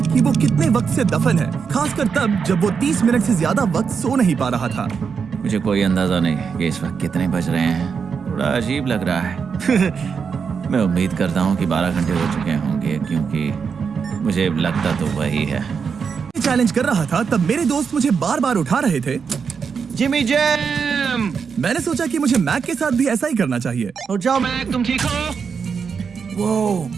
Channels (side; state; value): left; quieter; 6.1 dB